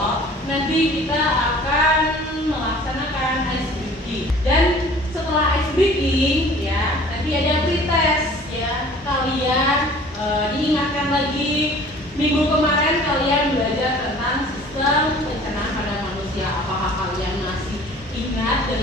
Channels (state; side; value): normal; both; correlation 0.48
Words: nanti kita akan melaksanakan ice breaking. Dan setelah ice breaking, ya, nanti ada pretest, ya. Kalian diingatkan lagi minggu kemarin kalian belajar tentang sistem pencernaan pada manusia. Apakah kalian masih ingat